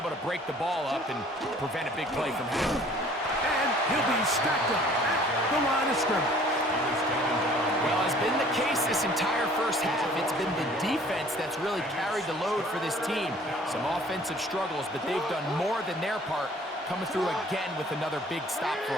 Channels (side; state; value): both; normal; correlation 0.53